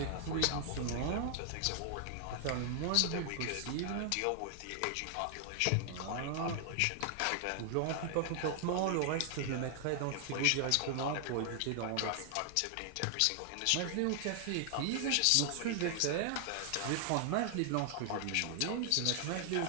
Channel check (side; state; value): both; different; correlation 0.00